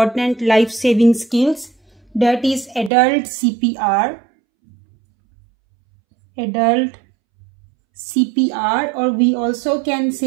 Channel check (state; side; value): drops out; left; at 2.9 s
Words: life-saving skills, that is adult CPR. Adult CPR, or we also can